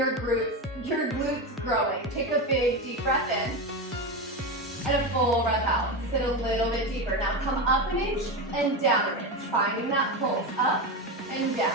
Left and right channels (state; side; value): normal; both; correlation 0.17